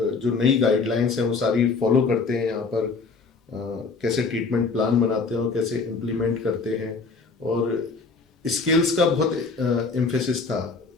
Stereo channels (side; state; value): right; quieter; 4.4 dB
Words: जो नई गाइडलाइंस हैं वो सारी फॉलो करते हैं यहाँ पर, कैसे ट्रीटमेंट प्लान बनाते हैं और कैसे इम्प्लीमेंट करते हैं। और स्किल्स का बहुत एम्फेसिस था